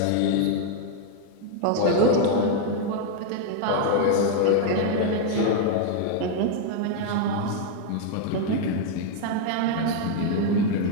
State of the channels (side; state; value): both; different; correlation 0.00